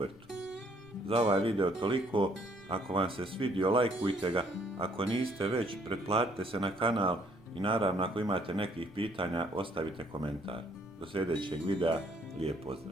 Za ovaj video toliko. Ako vam se svidio, lajkujte ga, ako niste već, pretplatite se na kanal i naravno ako imate nekih pitanja, ostavite komentar. Do sljedećeg videa, lijep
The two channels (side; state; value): right; noise; rumble, 29 dB below the sound